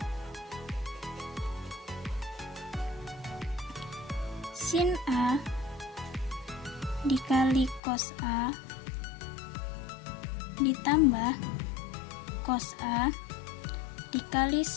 sin A dikali cos A ditambah cos A dikali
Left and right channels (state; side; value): drops out; right; at 7.8 s